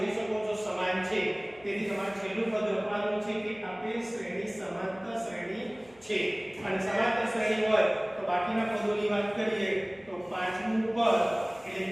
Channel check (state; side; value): noise; left; hum, 27 dB below the sound